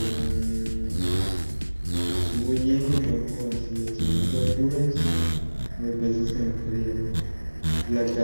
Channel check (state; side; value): inverted; both; correlation -1.00